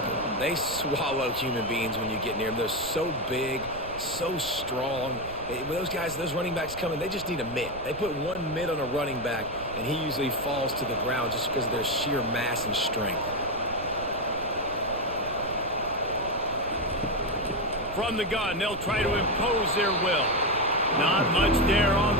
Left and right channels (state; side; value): noise; right; rumble, 14 dB below the sound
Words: They swallow human beings when you get near them. They're so big, so strong. When those guys, those running backs come in, they just need a mitt. They put one mitt on a running back, and he usually falls to the ground just because of their sheer mass and strength. From the gun, they'll try to impose their will. Not much there on